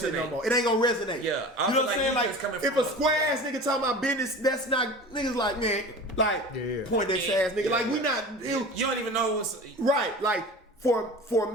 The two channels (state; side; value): normal; both; correlation 0.37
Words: no more. It ain't gonna resonate. Yeah, you know what I'm saying? Like, if a square ass nigga talking about business, that's not niggas like, man, like point that ass nigga. Like, we not. You don't even know what's right. Like for